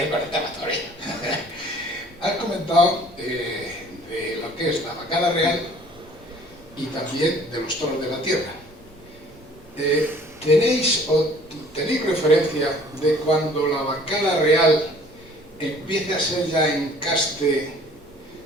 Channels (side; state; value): both; normal; correlation 0.53